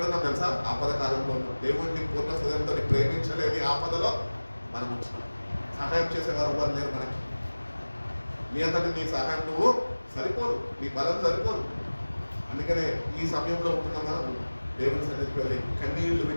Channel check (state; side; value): inverted; both; correlation -1.00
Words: తెలుసా? ఆపద కాలంలో ఉన్నాం. దేవుడిని పూర్ణ హృదయంతో ప్రేమించలేని ఆపదలో మనం ఉంటున్నాం. సహాయం చేసేవారు ఎవరు లేరు మనకి. నీ అంతటి నీ సహాయం నువ్వు సరిపోదు, నీ బలం సరిపోదు. అందుకనే ఈ సమయంలో ఉంటున్న మనం దేవుని సన్నిధికి వెళ్ళి కన్నీళ్లు